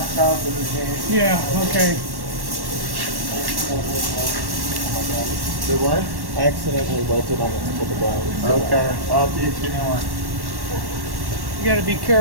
out the machine. Yeah, okay. The what? I accidentally welted on the tip of the brown. Okay. I'll teach you one. You got to be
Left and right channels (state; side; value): late; left; 1.1 ms